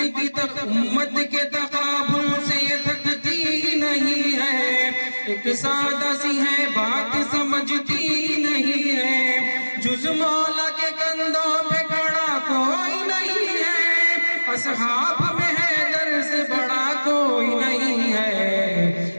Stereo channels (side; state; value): both; inverted; correlation -1.00